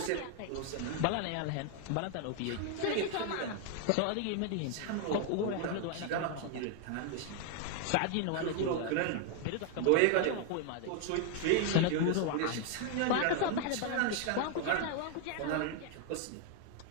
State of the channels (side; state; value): both; different; correlation 0.00